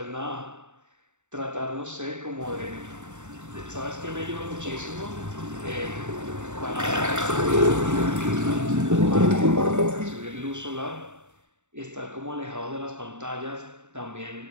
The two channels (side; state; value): left; late; 0.84 ms